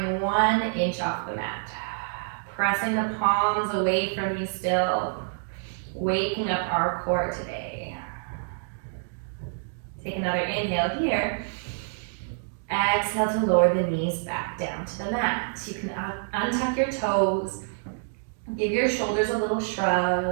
1 inch off the mat. Pressing the palms away from you still, waking up our core today. Take another inhale here. Exhale to lower the knees back down to the mat. You can untuck your toes, give your shoulders a little shrug,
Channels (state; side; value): silent; left; digital silence